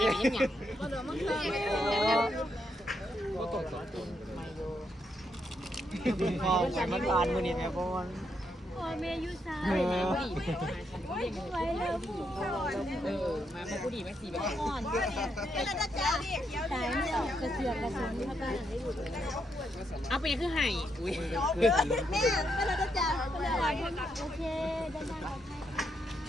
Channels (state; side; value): normal; both; correlation 0.79